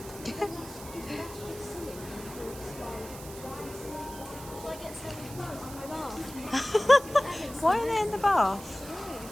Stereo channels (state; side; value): noise; right; hiss, 15 dB below the sound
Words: Why are they in the bath?